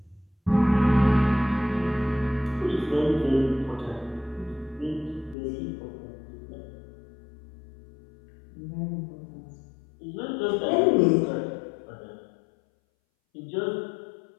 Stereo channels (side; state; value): right; drops out; at 5.4 s